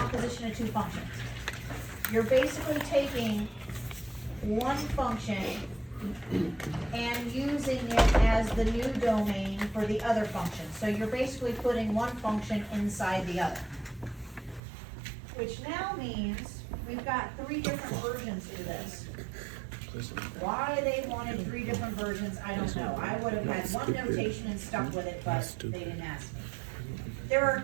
of 2 functions. You're basically taking one function and using it as the new domain for the other function. So you're basically putting one function inside the other. Which now means we've got 3 different versions to this. Why they wanted 3 different versions, I don't know. I would have had one notation and stuck with it, but they didn't ask me. There are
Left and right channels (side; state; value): left; drops out; at 14.6 s